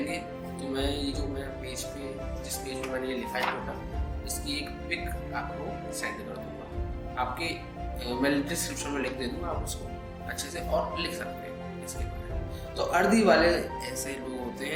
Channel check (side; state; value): both; identical; correlation 1.00